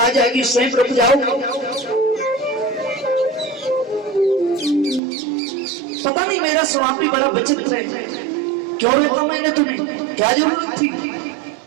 जाएगी, स्वयं रुक जाओगे। पता नहीं मेरा स्वभाव भी बड़ा विचित्र है, क्यों रोका मैंने तुम्हें, क्या जरूरत थी?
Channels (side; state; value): left; drops out; at 5.0 s